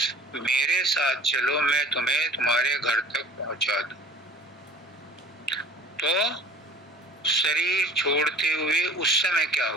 मेरे साथ चलो, मैं तुम्हें तुम्हारे घर तक पहुँचा दूँ। तो शरीर छोड़ते हुए उस समय क्या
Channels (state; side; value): normal; both; correlation 0.47